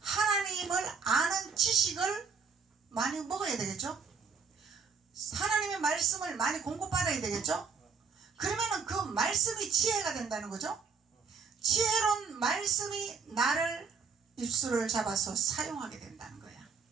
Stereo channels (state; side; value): quieter; left; 5.5 dB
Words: 아는 지식을 많이 먹어야 되겠죠. 하나님의 말씀을 많이 공급받아야 되겠죠. 그러면 그 말씀이 지혜가 된다는 거죠. 지혜로운 말씀이 나를 입술을 잡아서 사용하게 된다는 거야.